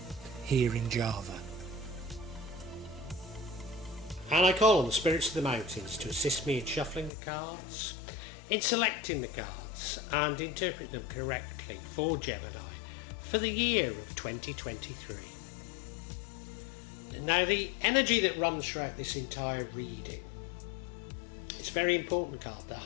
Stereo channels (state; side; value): drops out; right; at 7.1 s